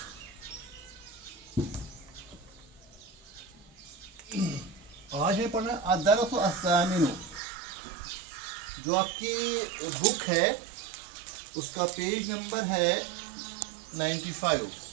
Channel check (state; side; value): drops out; left; at 7.4 s